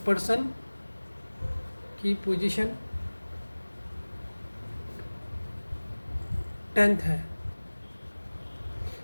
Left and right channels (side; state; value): both; inverted; correlation -1.00